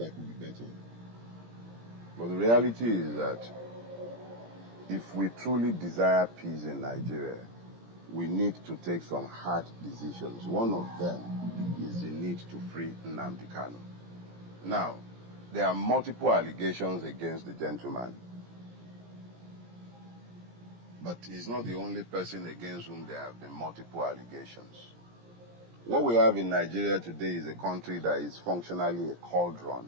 could be better. But the reality is that if we truly desire peace in Nigeria, we need to take some hard decisions. One of them is the need to free Nnamdi Kanu. Now, there are multiple allegations against the gentleman. But he's not the only person against whom there have been multiple allegations. What we have in Nigeria today is a country that is functionally a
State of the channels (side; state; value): left; late; 17 ms